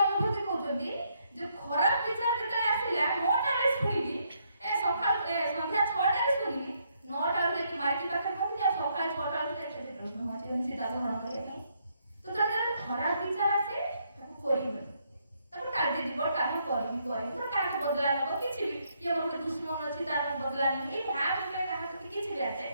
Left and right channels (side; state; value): both; inverted; correlation -0.74